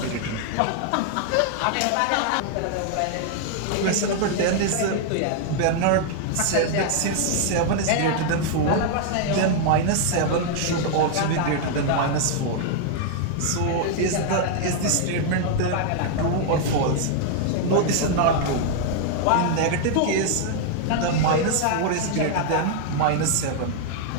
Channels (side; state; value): both; different; correlation 0.00